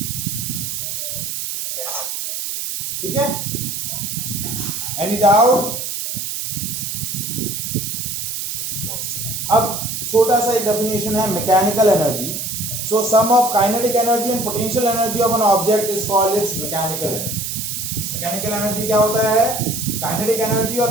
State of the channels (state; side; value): noise; right; hiss, 4 dB below the sound